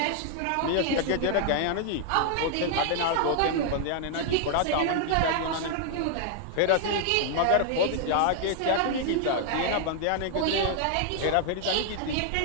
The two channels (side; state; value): both; different; correlation 0.00